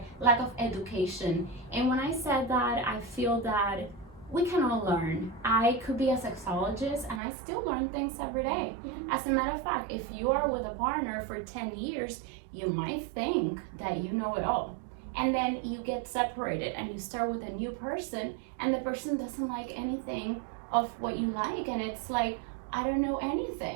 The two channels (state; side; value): drops out; left; at 7.2 s